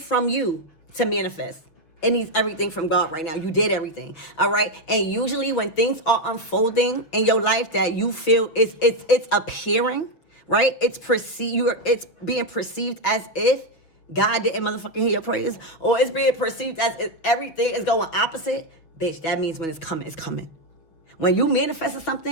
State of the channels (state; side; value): late; right; 6.3 ms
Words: you to manifest. It needs everything from God right now. You did everything. All right. And usually when things are unfolding in your life that you feel it's appearing, right? It's being perceived as if God didn't motherfucking hear your prayers, or it's being perceived as if everything is going opposite. Bitch, that means when it's coming, it's coming. When you manifested